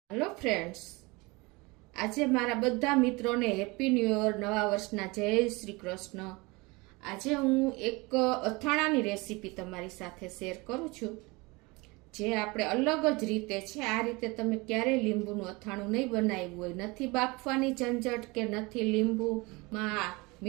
Hello friends, આજે મારા બધા મિત્રોને હેપી ન્યૂ યર, નવા વર્ષના જય શ્રી કૃષ્ણ। આજે હું એક અથાણાની રેસીપી તમારી સાથે શેર કરું છું, જે આપણે અલગ જ રીતે છે। આ રીતે તમે ક્યારેય લીંબુનું અથાણું નહીં બનાવ્યું હોય, નથી બાફવાની ઝંઝટ કે નથી લીંબુમાં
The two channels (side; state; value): left; quieter; 25.0 dB